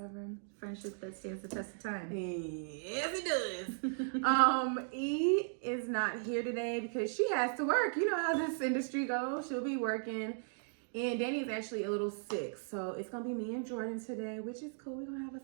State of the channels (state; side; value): silent; left; digital silence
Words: Friendship that stands the test of time. Yes, it does. E is not here today because she has to work. You know how this industry goes. She'll be working. And Danny's actually a little sick, so it's gonna be me and Jordan today, which is cool. We're gonna have us